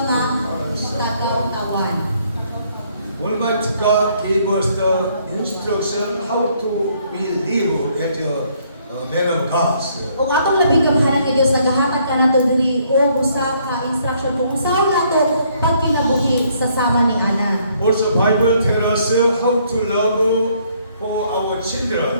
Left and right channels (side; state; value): both; inverted; correlation -0.67